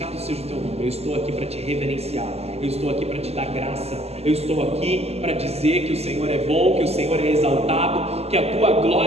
seja o teu nome. Eu estou aqui para te reverenciar. Eu estou aqui para te dar graça. Eu estou aqui para dizer que o Senhor é bom, que o Senhor é exaltado, que a tua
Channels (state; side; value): late; left; 0.30 ms